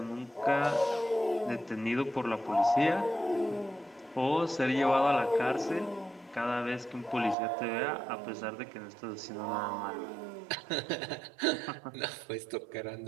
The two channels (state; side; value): drops out; left; at 7.4 s